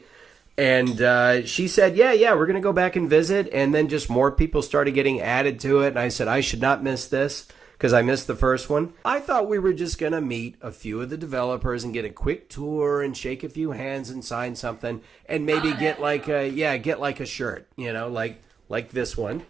And she said, yeah, we're going to go back and visit. And then just more people started getting added to it. And I said, I should not miss this because I missed the first one. I thought we were just going to meet a few of the developers and get a quick tour and shake a few hands and sign something. And maybe get like a shirt, like this one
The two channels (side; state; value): left; quieter; 5.9 dB